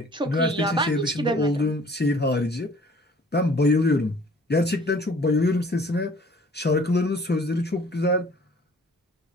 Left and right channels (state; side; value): normal; both; correlation 0.53